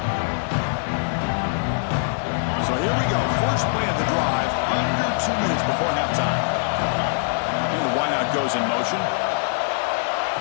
Goes in motion.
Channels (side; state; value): right; silent; digital silence